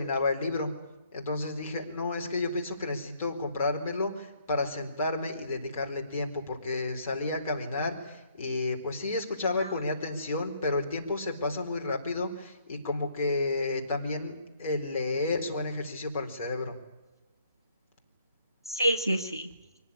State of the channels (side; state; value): both; inverted; correlation -0.67